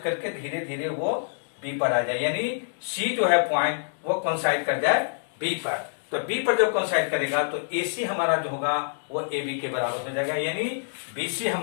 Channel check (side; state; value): right; silent; digital silence